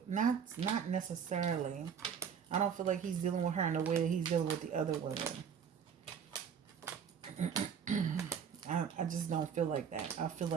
Not necessarily. I don't feel like he's dealing with her in the way that he's dealing with the other women. I just don't feel like that. I feel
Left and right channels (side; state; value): left; quieter; 7.4 dB